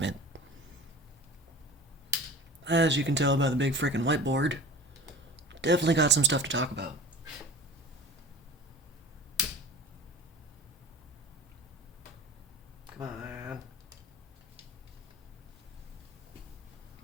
As you can tell by the big frickin' whiteboard, definitely got some stuff to talk about. Come on.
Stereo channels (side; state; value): both; normal; correlation 0.39